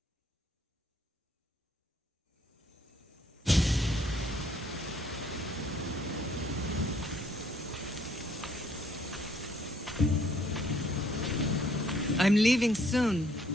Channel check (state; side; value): normal; both; correlation 0.65